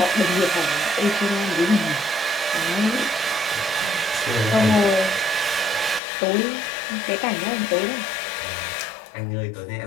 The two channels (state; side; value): drops out; right; at 6.0 s